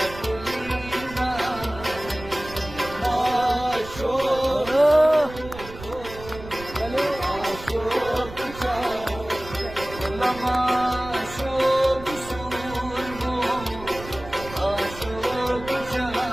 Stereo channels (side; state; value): right; noise; rumble, 14 dB below the sound